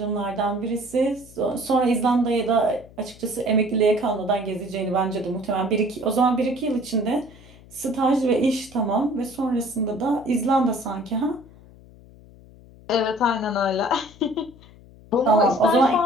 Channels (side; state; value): left; noise; hum, 23 dB below the sound